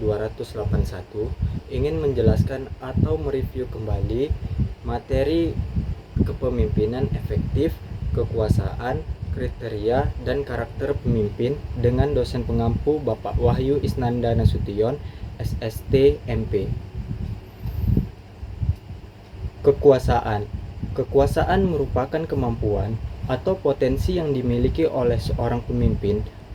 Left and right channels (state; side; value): identical; both; correlation 1.00